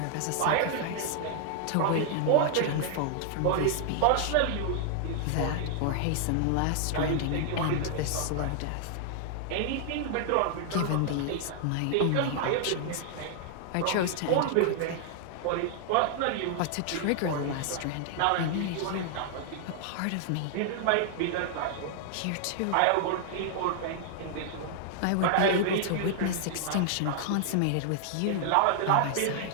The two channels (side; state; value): both; different; correlation 0.00